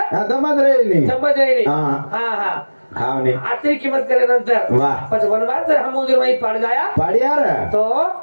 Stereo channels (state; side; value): inverted; both; correlation -1.00